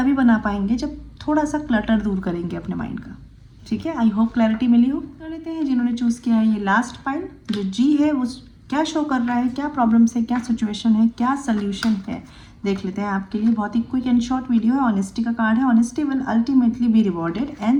बना पाएंगे जब थोड़ा सा क्लटर दूर करेंगे अपने माइंड का, ठीक है। आई होप क्लैरिटी मिली हो। कर लेते हैं जिन्होंने चूज़ किया है ये लास्ट पाइल, जो जी है वो क्या शो कर रहा है, क्या प्रॉब्लम्स है, क्या सिचुएशन है, क्या सोल्यूशन है, देख लेते हैं आपके लिए। बहुत ही क्विक एंड शॉर्ट वीडियो है। ऑनेस्टी का कार्ड है, honesty will ultimately be rewarded.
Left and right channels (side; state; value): both; identical; correlation 1.00